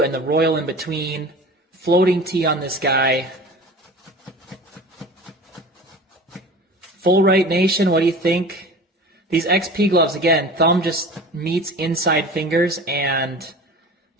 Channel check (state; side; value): normal; both; correlation 0.38